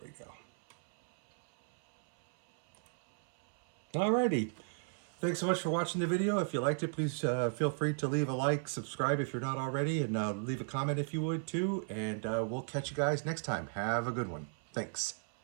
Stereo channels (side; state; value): left; silent; 54 dB below the other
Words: we go. Alrighty. Thanks so much for watching the video. If you liked it, please feel free to leave a like, subscribe if you're not already, and leave a comment if you would too. And we'll catch you guys next time. Have a good one. Thanks.